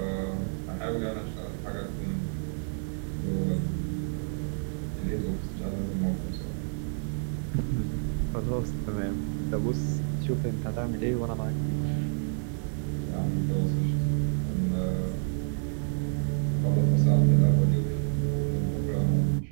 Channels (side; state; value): left; silent; 59 dB below the other